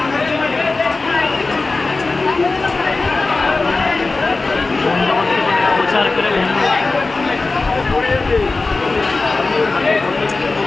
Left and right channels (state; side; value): quieter; right; 3.6 dB